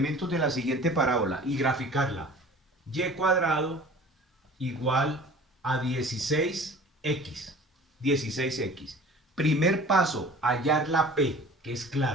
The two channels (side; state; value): both; normal; correlation 0.44